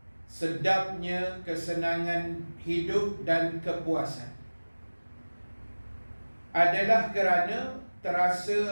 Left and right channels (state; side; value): inverted; both; correlation -1.00